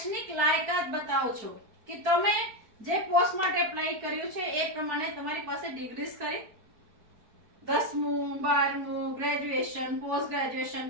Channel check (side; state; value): left; late; 4.7 ms